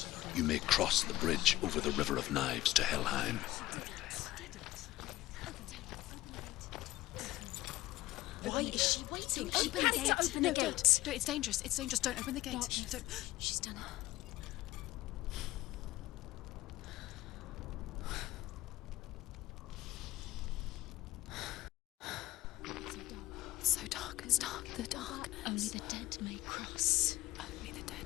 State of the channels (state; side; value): quieter; right; 16.9 dB